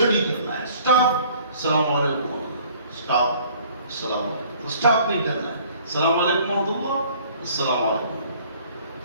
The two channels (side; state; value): both; inverted; correlation -0.54